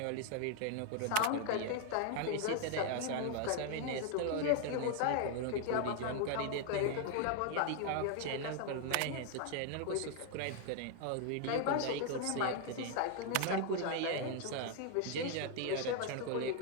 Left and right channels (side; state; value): both; different; correlation 0.00